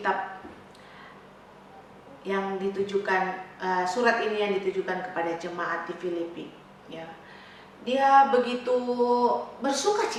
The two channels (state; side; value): identical; both; correlation 1.00